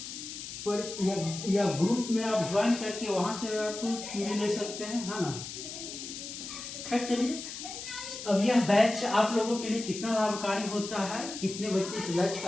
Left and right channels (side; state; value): left; noise; hiss, 9 dB below the sound